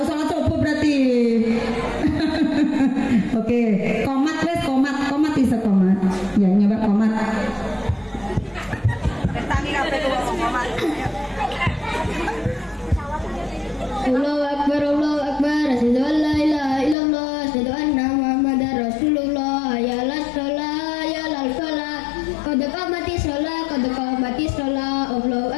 salat subuh berarti. Oke, komat wes komat iso komat. Ya, nyoba komat. Bertani kabeh komat. Allahu Akbar, Allahu Akbar. Asyhadu an la ilaha illallah, asyhadu anna Muhammadar Rasulullah. Ya la shalah, ya la falah. Qad qamatis shalah, qad qamatis shalah. Allahu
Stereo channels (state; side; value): drops out; right; at 16.9 s